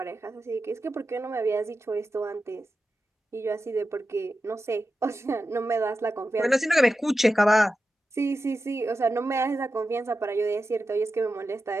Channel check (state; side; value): normal; both; correlation 0.91